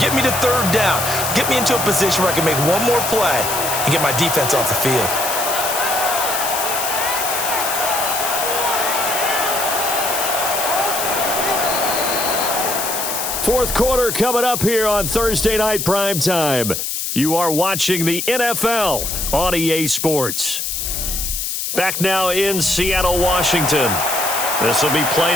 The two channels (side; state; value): left; noise; hiss, 3 dB below the sound